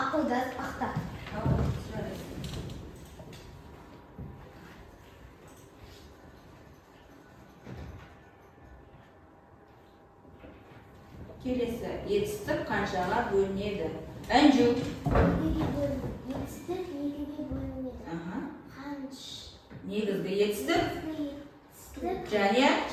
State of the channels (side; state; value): both; identical; correlation 1.00